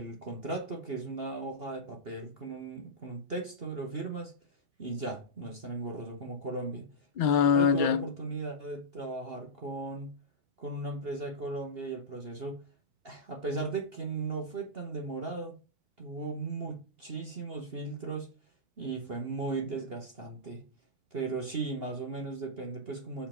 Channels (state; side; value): late; left; 2.8 ms